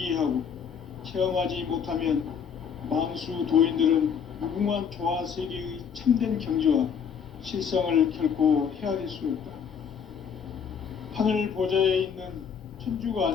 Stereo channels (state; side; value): quieter; right; 7.1 dB